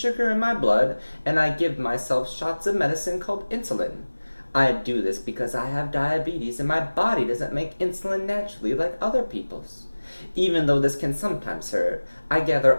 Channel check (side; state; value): both; inverted; correlation -1.00